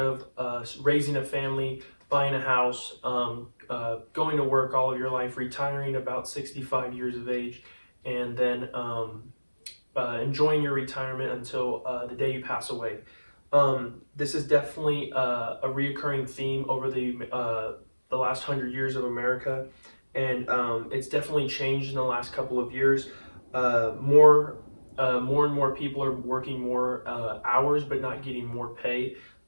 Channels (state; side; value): inverted; both; correlation -1.00